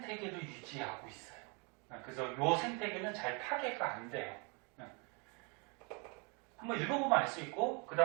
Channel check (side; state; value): left; quieter; 32.8 dB